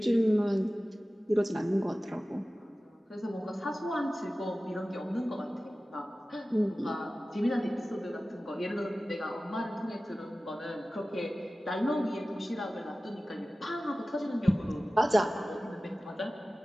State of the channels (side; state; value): both; normal; correlation 0.96